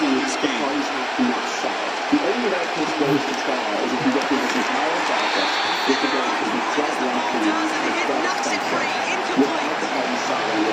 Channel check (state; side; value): identical; both; correlation 1.00